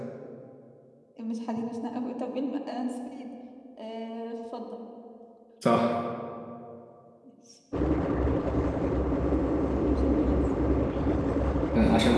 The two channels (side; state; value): both; identical; correlation 1.00